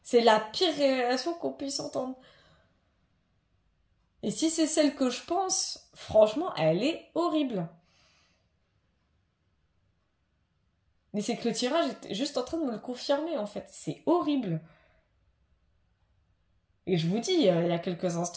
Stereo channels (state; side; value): identical; both; correlation 1.00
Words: C'est la pire révélation qu'on puisse entendre. Et si c'est celle que je pense, franchement, elle est horrible. Mais c'est que le tirage est juste en train de me le confirmer, en fait. C'est horrible. Et je vous dis, il y a quelques